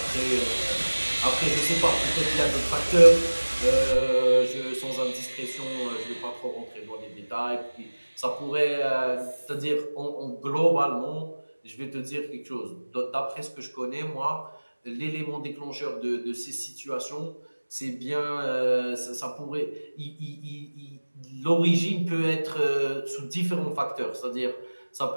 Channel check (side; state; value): both; inverted; correlation -1.00